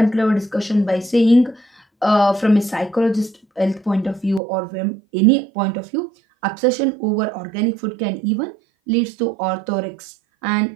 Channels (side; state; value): left; drops out; at 4.4 s